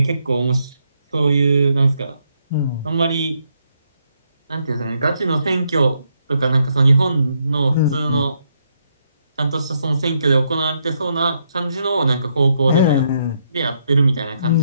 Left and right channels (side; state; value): both; inverted; correlation -0.76